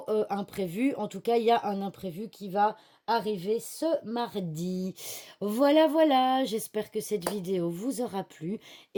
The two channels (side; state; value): both; identical; correlation 1.00